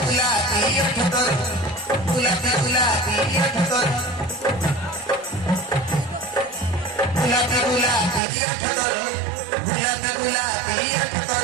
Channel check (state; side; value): drops out; left; at 8.2 s